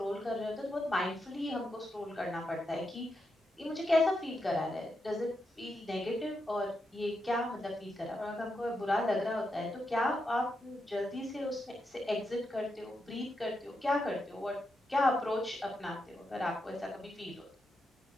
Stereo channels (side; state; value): both; normal; correlation 0.85